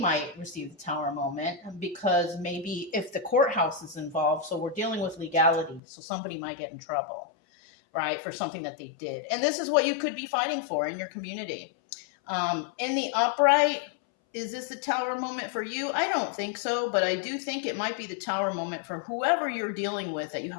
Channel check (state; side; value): drops out; right; at 5.8 s